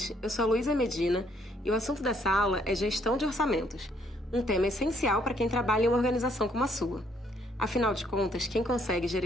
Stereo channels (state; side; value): normal; both; correlation 0.68